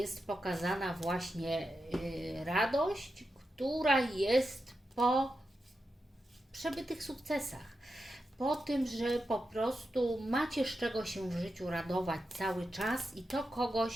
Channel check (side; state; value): both; normal; correlation 0.89